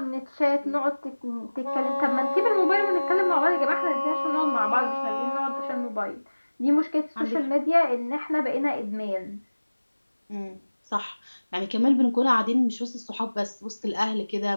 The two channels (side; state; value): both; inverted; correlation -1.00